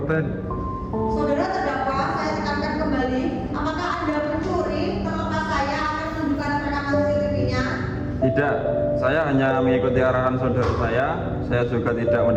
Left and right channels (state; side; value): identical; both; correlation 1.00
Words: Saudara terdakwa, saya tekankan kembali, apakah Anda mencuri terlepas saya akan menunjukkan rekaman CCTV-nya? Tidak, saya hanya mengikuti arahan saudara saya. Saya juga tidak